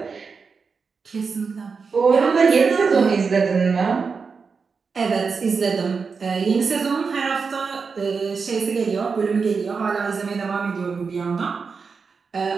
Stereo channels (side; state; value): left; quieter; 5.2 dB